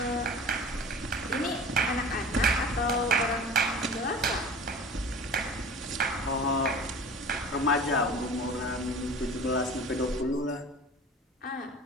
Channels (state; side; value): normal; both; correlation 0.40